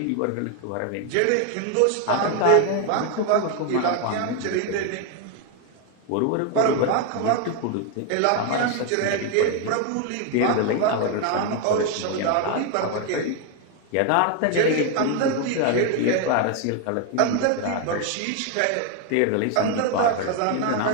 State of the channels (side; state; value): both; different; correlation 0.01